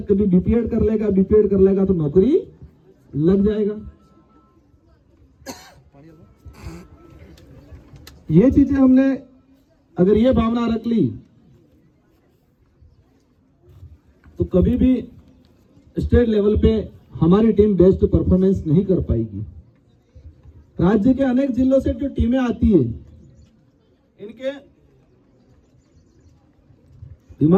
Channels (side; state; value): both; identical; correlation 1.00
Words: कभी बीपीएड कर लेगा तो नौकरी लग जाएगा। ये चीजें हमने अगर ये भावना रख ली तो कभी भी स्टेट लेवल पे हमारी टीम बेस्ट परफॉर्मेंस नहीं कर पाएगी। राज्य के अनेक जिलों से जो टीमें आती है, इनके